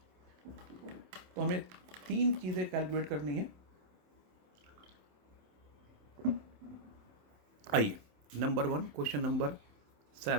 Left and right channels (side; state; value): left; late; 27 ms